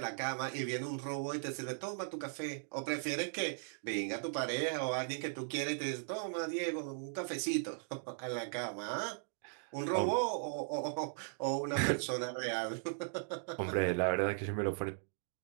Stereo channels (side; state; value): left; silent; digital silence